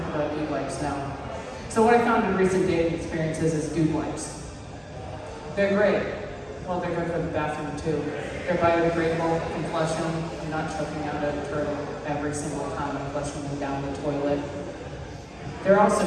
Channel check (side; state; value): both; identical; correlation 1.00